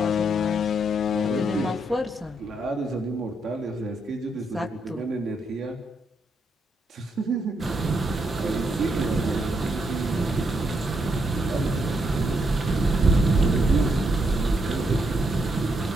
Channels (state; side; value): normal; both; correlation 0.78